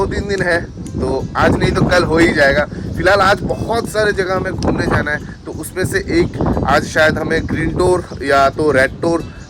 दिन है, तो आज नहीं तो कल हो ही जाएगा। फिलहाल आज बहुत सारे जगह हमें घूमने जाना है, तो उसमें से एक आज शायद हमें ग्रीन टूर या तो रेड टूर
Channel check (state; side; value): identical; both; correlation 1.00